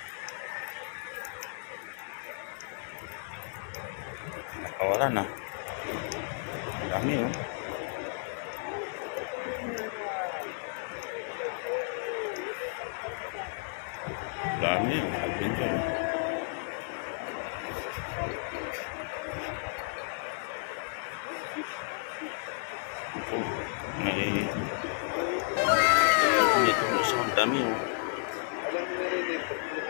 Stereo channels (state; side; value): silent; right; digital silence